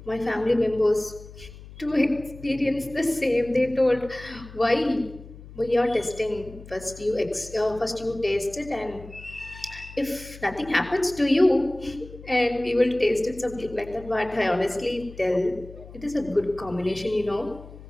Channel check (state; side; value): noise; left; hum, 17 dB below the sound